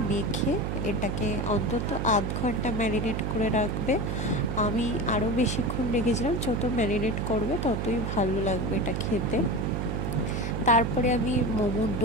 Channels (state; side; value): noise; right; hum, 1 dB below the sound